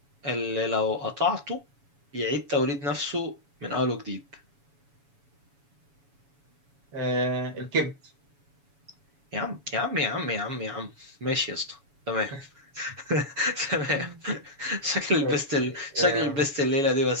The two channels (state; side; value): late; left; 7.1 ms